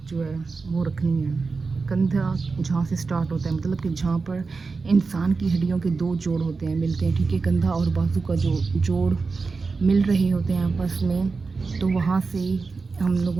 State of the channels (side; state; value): left; quieter; 4.4 dB